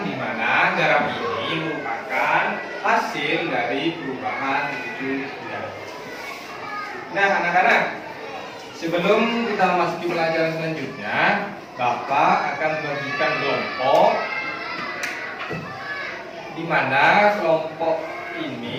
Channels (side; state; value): both; identical; correlation 1.00